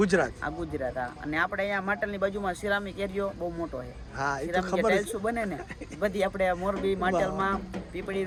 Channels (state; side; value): identical; both; correlation 1.00